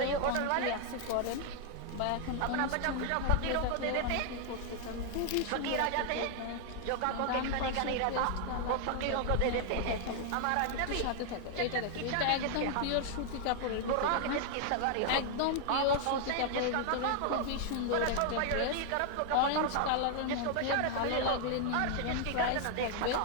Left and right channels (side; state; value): both; different; correlation 0.00